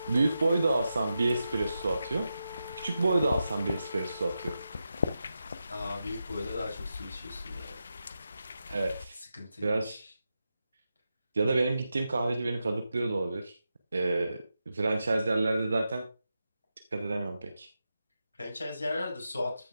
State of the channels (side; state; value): both; inverted; correlation -0.89